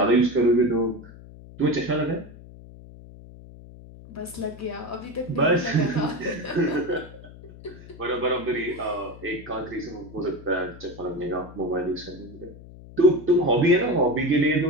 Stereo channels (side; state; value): left; noise; hum, 18 dB below the sound